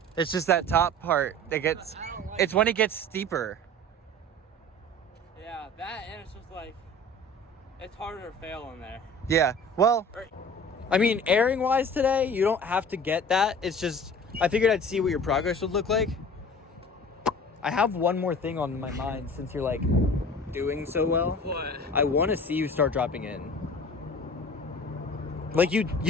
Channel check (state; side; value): normal; both; correlation 0.42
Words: It's just that top part that gets, I don't like it's when it gets steeper. Yeah, that and it's just like, it's harder to fail in there. Yeah, well, Right. I mean, airing wise today, you don't have to get that. It's just, I figured I'd see what your progress would look like. I have one more thing on my mind since you're like doing so well. What? I want to see you start dropping in. Like you